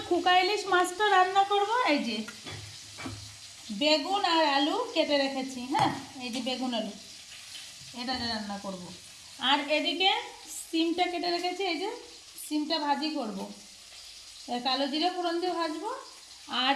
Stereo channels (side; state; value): both; identical; correlation 1.00